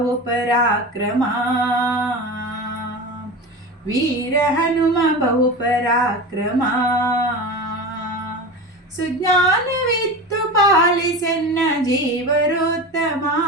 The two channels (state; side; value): normal; both; correlation 0.27